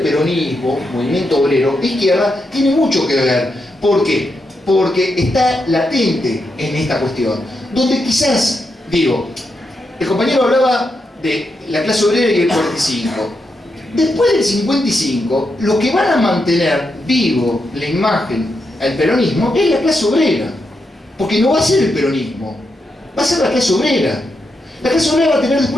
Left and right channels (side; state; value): both; normal; correlation 0.84